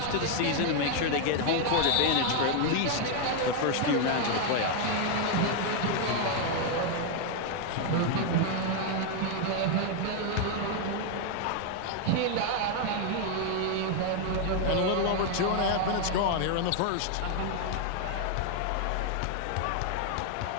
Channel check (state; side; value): different; both; correlation 0.01